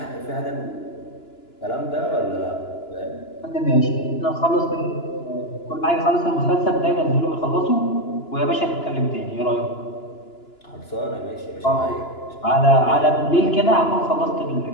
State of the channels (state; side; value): late; right; 2.9 ms